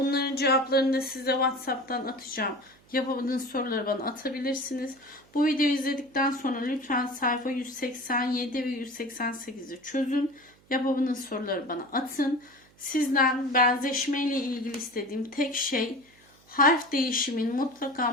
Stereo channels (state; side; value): noise; right; hum, 30 dB below the sound